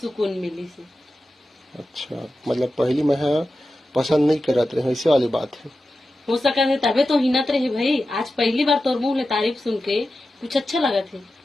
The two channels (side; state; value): both; normal; correlation 0.92